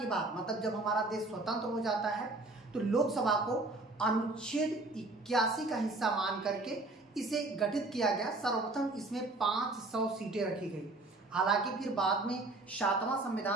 बाद मतलब जब हमारा देश स्वतंत्र हो जाता है तो लोकसभा को अनुच्छेद 81 का हिस्सा मान करके इसे गठित किया गया। सर्वप्रथम इसमें 500 सीटें रखी गई। हालांकि फिर बाद में 7वां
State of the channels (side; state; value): left; quieter; 3.0 dB